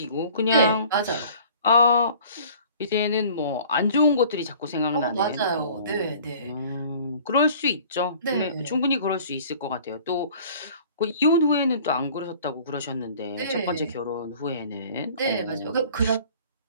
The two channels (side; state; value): both; inverted; correlation -0.49